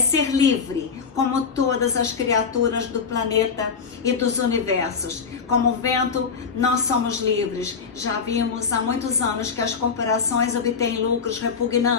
livre, como todas as criaturas do planeta e dos universos. Como o vento, nós somos livres. Já vimos há muitos anos que as corporações obtêm lucros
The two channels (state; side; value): quieter; right; 5.8 dB